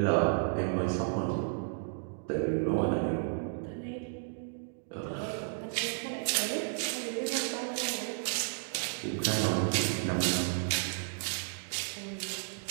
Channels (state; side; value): silent; left; digital silence